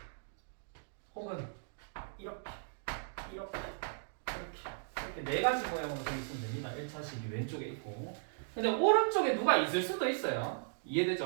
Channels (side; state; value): left; silent; digital silence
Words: 혹은 이렇게 이렇게 네 가지 모양으로 되어 있으면 됩니다. 1차식이 왼쪽에 있고 근데 오른쪽에 누가 있을 수도 있어요.